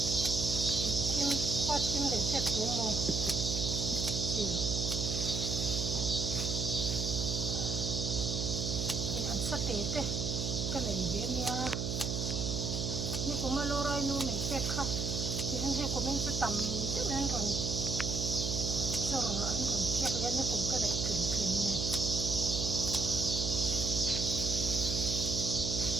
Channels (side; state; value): right; noise; hum, 1 dB below the sound